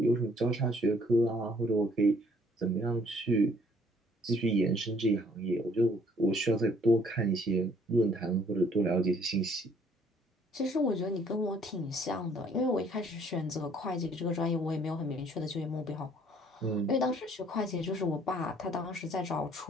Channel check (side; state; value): both; normal; correlation 0.61